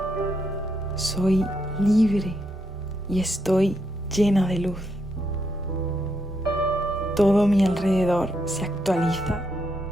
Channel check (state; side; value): normal; both; correlation 0.79